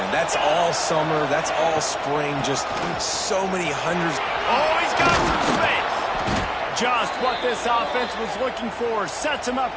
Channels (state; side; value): identical; both; correlation 1.00